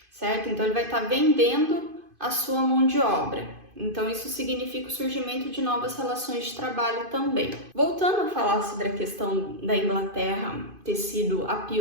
certo? Então ele vai estar vendendo a sua mão de obra. Então isso significa o surgimento de novas relações de trabalho também. Voltando a falar sobre a questão da Inglaterra ter sido a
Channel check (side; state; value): left; late; 2.5 ms